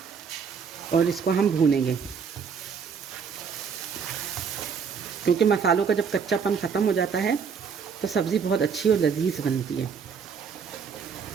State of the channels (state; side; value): quieter; left; 6.3 dB